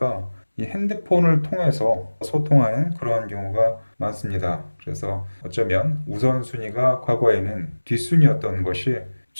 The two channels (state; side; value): inverted; both; correlation -1.00